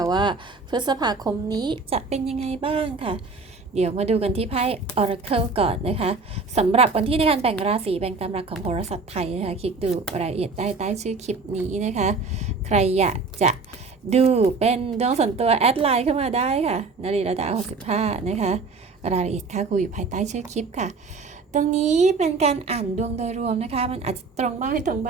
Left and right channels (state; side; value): quieter; left; 4.1 dB